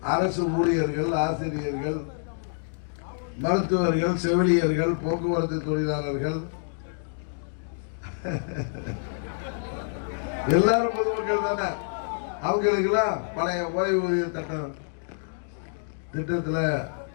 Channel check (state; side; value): silent; right; digital silence